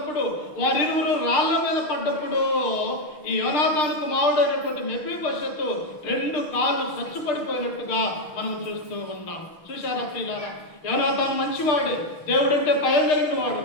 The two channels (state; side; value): late; right; 6.5 ms